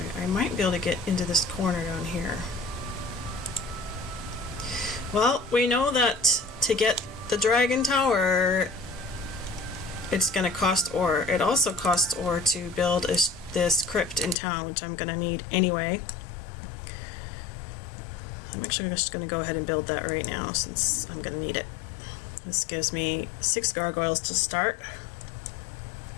I might be able to get into this corner down here. Well, we know that to get the dragon tower, it's gonna cost ore. It also costs ore to build this crypt in town, which I'm gonna need anyway. I'm actually just going to go ahead and build that right now since I'm going to need it. This gives me 6 gargoyles to start.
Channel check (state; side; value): drops out; right; at 14.4 s